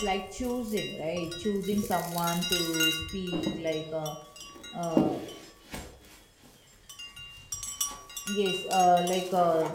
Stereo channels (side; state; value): both; identical; correlation 1.00